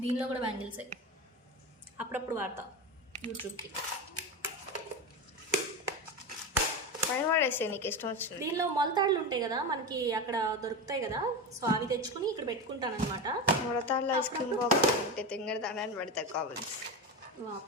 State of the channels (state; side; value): normal; both; correlation 0.20